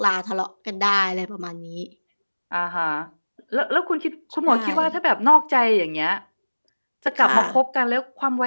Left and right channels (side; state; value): both; inverted; correlation -1.00